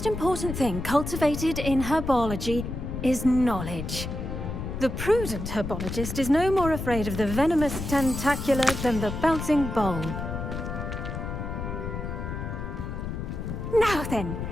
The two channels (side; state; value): left; noise; rumble, 5 dB below the sound